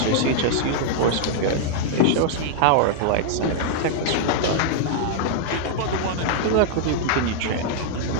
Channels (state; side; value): different; both; correlation -0.01